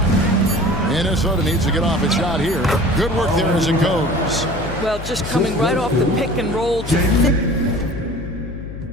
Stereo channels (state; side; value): noise; left; hum, 10 dB below the sound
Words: Minnesota needs to get off its shot here. Good work there as it goes. Well, just coming right off the pick and roll to